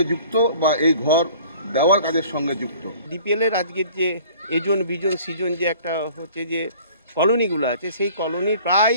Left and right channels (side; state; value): both; inverted; correlation -0.49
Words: যুক্ত বা এই ঘর দেওয়ার কাজের সঙ্গে যুক্ত। ডিপিএলের আজকের যে এজন বিজন সিজন যে একটা হচ্ছে যে কলোনিগুলো আছে, সেই কলোনির